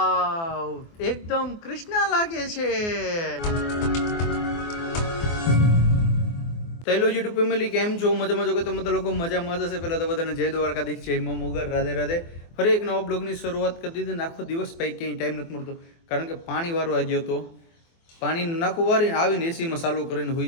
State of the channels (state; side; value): late; right; 24 ms